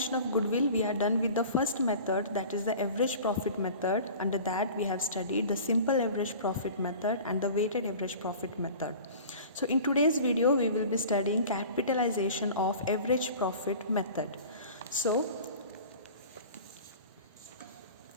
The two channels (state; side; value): inverted; both; correlation -0.41